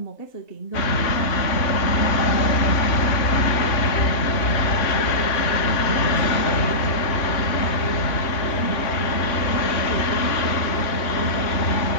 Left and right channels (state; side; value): late; right; 3.3 ms